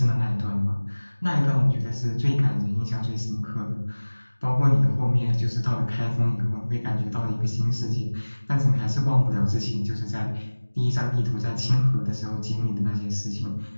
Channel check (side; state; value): both; inverted; correlation -1.00